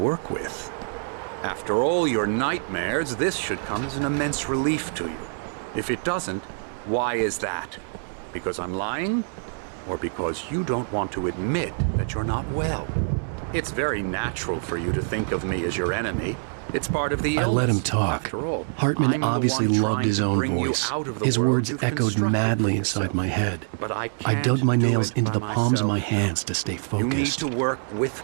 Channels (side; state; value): left; silent; digital silence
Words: with. After all your nightmares, this should come as an immense relief to you. If it doesn't, why is that? Because I'm lying? Or because you don't want to admit that you're not well? It's very natural for you to think of me as your enemy. It's part of the illness. I let him talk. After all, Hartman obviously loved his own voice. His words echoed madly inside my head. But I dug my nails into the palms of my hands to stay focused. You need to work with